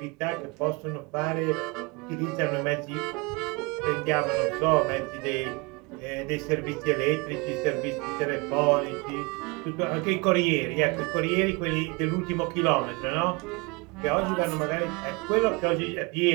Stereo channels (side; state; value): left; quieter; 28.1 dB